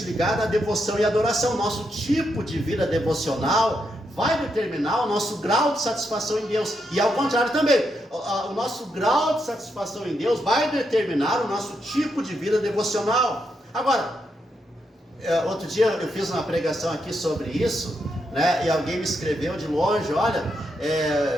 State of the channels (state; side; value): normal; both; correlation 0.82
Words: ligada à devoção e adoração. Nosso tipo de vida devocional vai determinar o nosso grau de satisfação em Deus. E ao contrário também, o nosso grau de satisfação em Deus vai determinar o nosso tipo de vida devocional. Agora, outro dia eu fiz uma pregação aqui sobre isso, né, e alguém me escreveu de longe: olha,